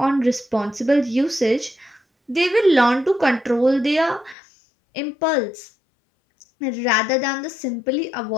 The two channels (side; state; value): right; drops out; at 4.4 s